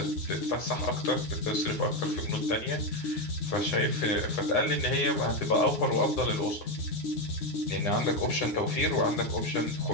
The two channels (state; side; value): late; right; 9.6 ms